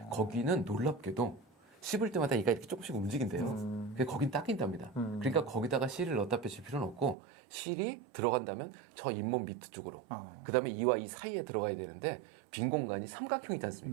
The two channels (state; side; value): drops out; left; at 7.2 s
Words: 거기는 놀랍게도 씹을 때마다 이가 이렇게 조금씩 움직인대요. 근데 거긴 닦인답니다. 그러니까 거기다가 실을 넣다 빼실 필요는 없고 실이 들어간다면 저 잇몸 밑 쪽으로 그 다음에 이와 이 사이에 들어가야 되는데 빈 공간이 삼각형이지